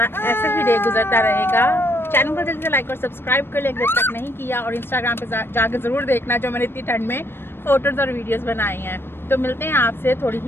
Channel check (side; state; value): right; late; 0.11 ms